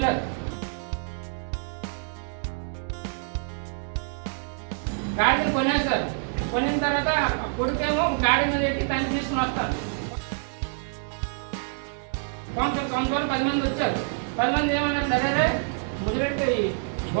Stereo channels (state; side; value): silent; left; 60 dB below the other